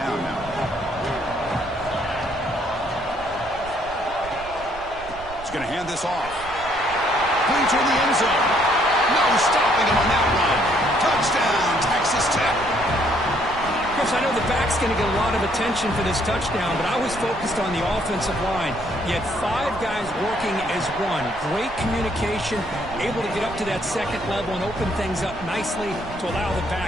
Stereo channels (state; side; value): noise; right; rumble, 16 dB below the sound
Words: now. He's going to hand this off. Playing toward the end zone. No stopping him on that one. Touchdown, Texas Tech. Chris, I know the back's going to get a lot of attention for this touchdown, but I was focused on the offensive line. You had 5 guys working as one. Great communication, able to get up to that second level and open things up nicely to allow the